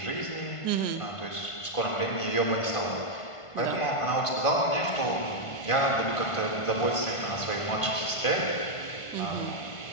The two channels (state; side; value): late; right; 1.5 ms